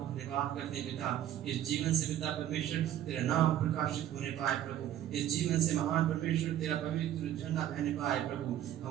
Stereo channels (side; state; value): left; quieter; 11.6 dB